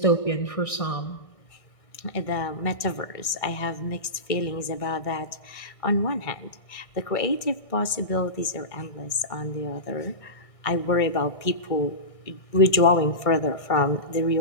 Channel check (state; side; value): late; right; 1.6 ms